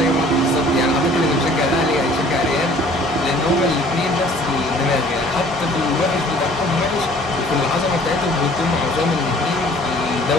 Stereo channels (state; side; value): normal; both; correlation 0.54